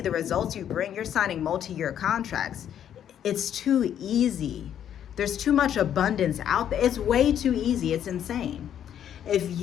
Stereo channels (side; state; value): right; quieter; 9.8 dB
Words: the results you bring, you're signing multi-year contracts. It's too easy. There's too much abundance out there. It's way too easy. It's insane. If